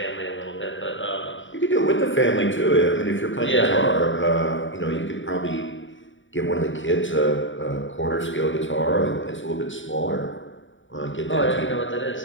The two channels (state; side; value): late; right; 0.56 ms